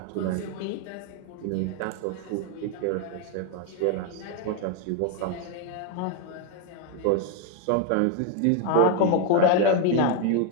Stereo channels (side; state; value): both; different; correlation 0.00